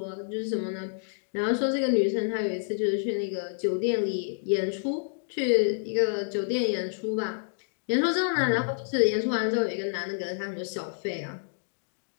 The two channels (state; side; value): silent; right; digital silence